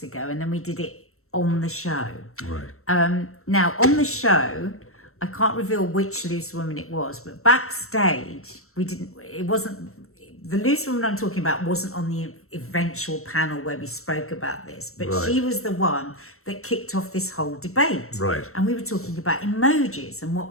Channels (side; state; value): right; late; 0.63 ms